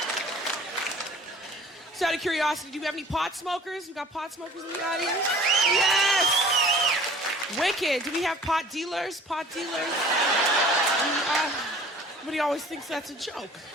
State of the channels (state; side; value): normal; both; correlation 0.47